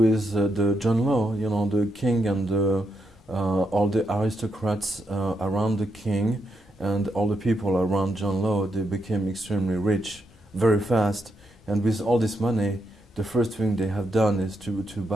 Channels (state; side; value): normal; both; correlation 0.81